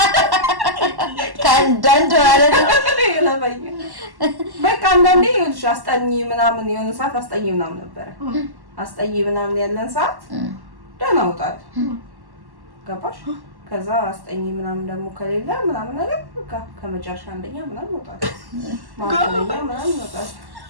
ከአንዳንድ ማለት ነው። ይለፈኝ በቃ አንዳንዴ ይኸውልሽ አስጠኝ ምናምን የሆነ ሰዓት አስጠኝ ምናምን ነበረ። አስጠኝ ምናምን ያለን ሰዓት ደህና እወጣለሁ። ገባሽ? ከዛ አስጠኝ ምናምን ደግሞ ከሌለ ምናምን ነገር በቃ ከመጨረሻ አንደኛ ምናምን እወጣለሁ። ማንኛውም ምናምን እወጣለሁ።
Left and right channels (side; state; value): left; late; 1.1 ms